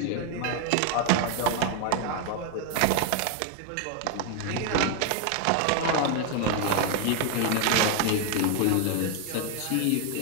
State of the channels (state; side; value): different; both; correlation 0.01